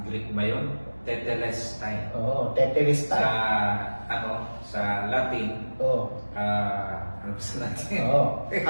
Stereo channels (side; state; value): both; inverted; correlation -1.00